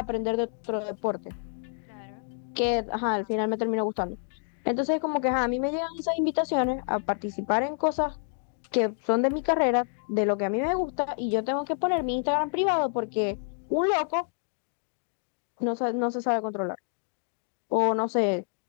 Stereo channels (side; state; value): right; silent; 59 dB below the other